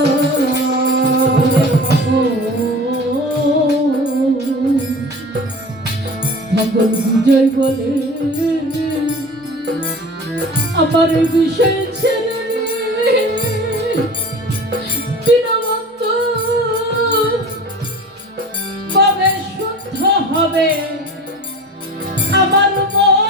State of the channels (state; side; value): normal; both; correlation 0.38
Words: ভগবান বিজয় বলে আমার বিষয় ছেলে বিনবন্ত কবে শুদ্ধ হবে